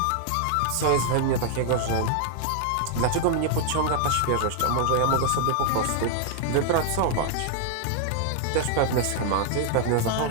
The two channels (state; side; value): different; both; correlation -0.01